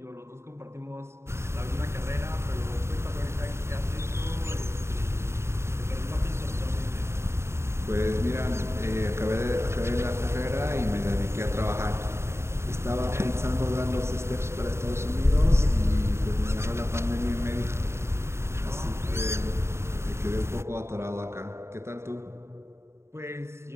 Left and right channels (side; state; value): left; late; 0.13 ms